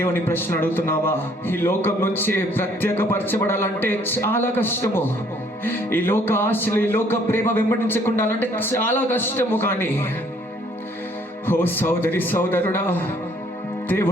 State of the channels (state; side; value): normal; both; correlation 0.62